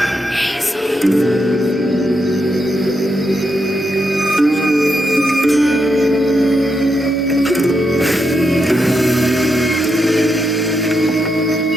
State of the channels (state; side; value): normal; both; correlation 0.83